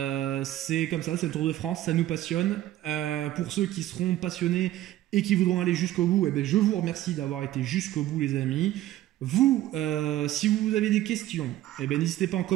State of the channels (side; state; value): left; quieter; 14.3 dB